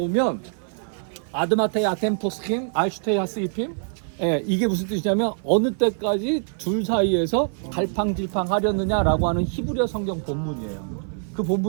아드마테이 아템포스킴 알슈테이 하스이핌, 예, 이게 무슨 뜻이냐면 어느 때까지 둘 사이에서 갈팡질팡 하려느냐라고 하는 히브리어 성경 본문이에요. 그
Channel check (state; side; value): silent; left; 55 dB below the other